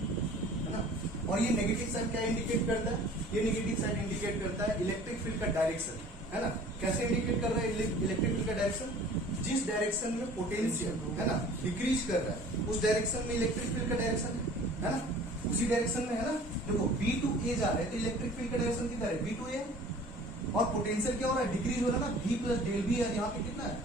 है ना। और ये नेगेटिव साइन क्या इंडिकेट करता है, ये नेगेटिव साइन इंडिकेट करता है इलेक्ट्रिक फील्ड का डायरेक्शन, है ना। कैसे इंडिकेट कर रहा है इलेक्ट्रिक फील्ड का डायरेक्शन, जिस डायरेक्शन में पोटेंशियल, है ना, डिक्रीज कर रहा है उस डायरेक्शन में इलेक्ट्रिक फील्ड का डायरेक्शन है ना, उसी डायरेक्शन में, है ना। देखो बी टू ए जा रहा है तो इलेक्ट्रिक फील्ड का डायरेक्शन कितना है बी टू ए, और पोटेंशियल क्या हो रहा है डिक्रीज हो रहा है ना, V प्लस डेल वी, यहाँ पे कितना है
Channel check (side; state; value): both; normal; correlation 0.47